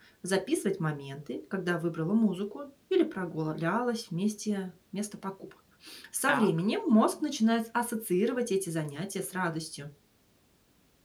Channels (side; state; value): both; identical; correlation 1.00